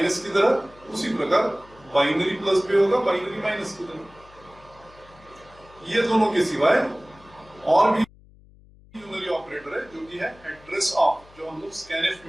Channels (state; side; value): noise; left; hum, 25 dB below the sound